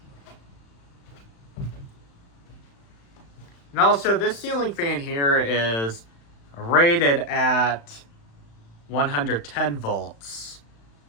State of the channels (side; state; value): right; late; 35 ms